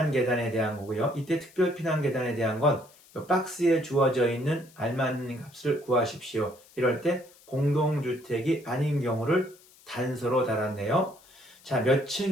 계단에 대한 거고요. 이때 특별 피난 계단에 대한 건 박스에 주어져 있는 알맞는 값을 구하십시오. 이럴 때 공동주택이 아닌 경우를 단서로 달았네요. 자, 몇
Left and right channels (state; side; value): noise; left; hiss, 26 dB below the sound